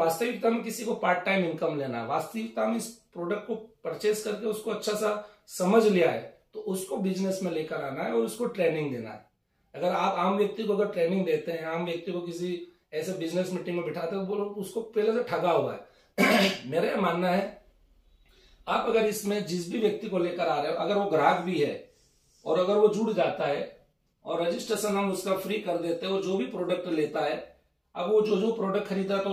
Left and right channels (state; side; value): identical; both; correlation 1.00